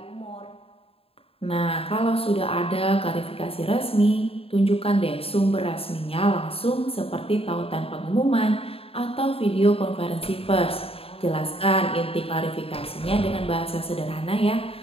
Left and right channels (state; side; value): late; right; 0.28 ms